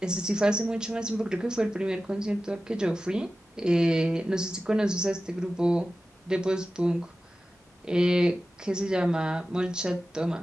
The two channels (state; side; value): normal; both; correlation 0.94